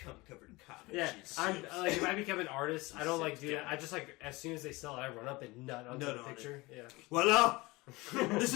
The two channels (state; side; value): quieter; right; 22.6 dB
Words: covered comic. Yeah, I'm like if I become an artist, I don't like do that. I just like as soon as they sell it, I run up and nut onto Nut the on picture. Yeah. Voila! This